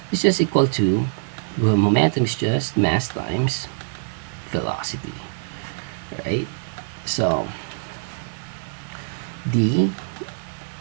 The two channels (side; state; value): left; silent; digital silence